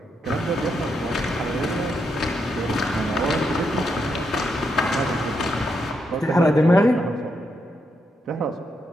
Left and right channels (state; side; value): normal; both; correlation 0.81